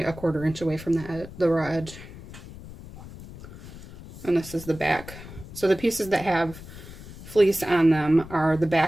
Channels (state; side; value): noise; left; rumble, 15 dB below the sound